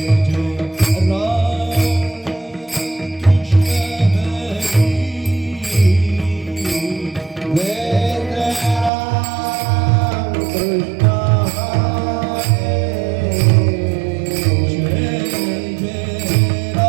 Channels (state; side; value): drops out; left; at 8.9 s